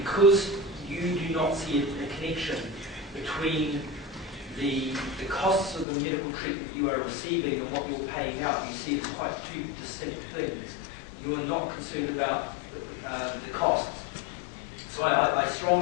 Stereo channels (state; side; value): drops out; right; at 5.9 s